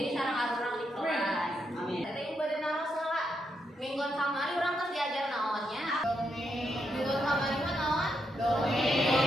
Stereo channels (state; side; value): normal; both; correlation 0.81